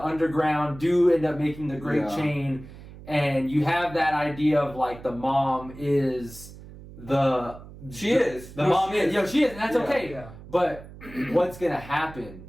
underground do end up making the Great Chain, and you have that idea of like the mom is the mom is, and that's okay. Yeah. But what's gonna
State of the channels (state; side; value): noise; right; hum, 17 dB below the sound